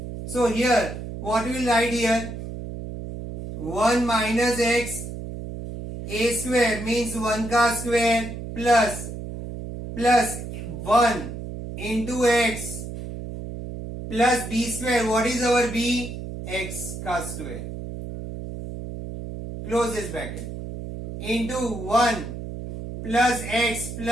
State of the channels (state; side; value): noise; right; hum, 8 dB below the sound